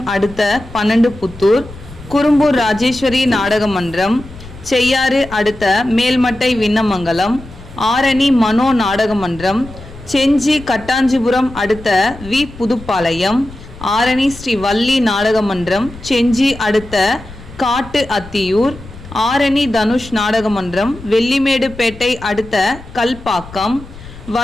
அடுத்த 12 புத்தூர், குறும்பூர் ராஜேஸ்வரி நாடக மன்றம், செய்யாறு அடுத்த மேல்மட்டை விண்ணமங்கலம், ஆரணி மனோ நாடக மன்றம், செஞ்சி கட்டாஞ்சிபுரம் அடுத்த வி. புதுப்பாளையம், ஆரணி ஸ்ரீ வள்ளி நாடக மன்றம், செஞ்சி அடுத்த காட்டு அத்தியூர், ஆரணி தனுஷ் நாடக மன்றம், வெள்ளிமேடுபேட்டை அடுத்த கல்பாக்கம்,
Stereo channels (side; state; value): left; noise; rumble, 17 dB below the sound